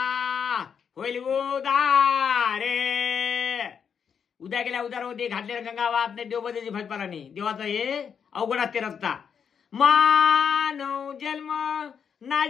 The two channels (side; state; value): right; quieter; 7.2 dB